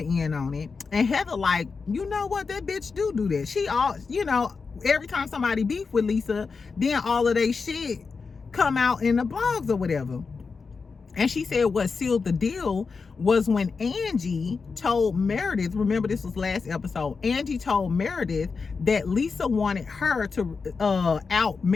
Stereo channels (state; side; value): quieter; right; 4.9 dB